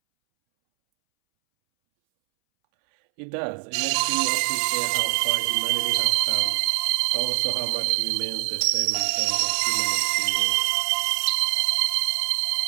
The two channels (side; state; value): left; silent; 63 dB below the other